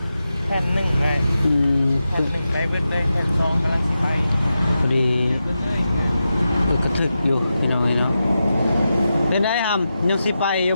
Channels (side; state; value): both; inverted; correlation -0.90